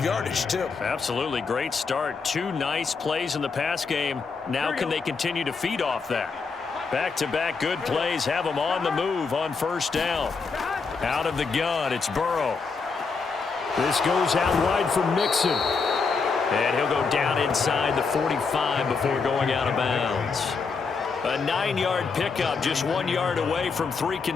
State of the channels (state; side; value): quieter; right; 4.9 dB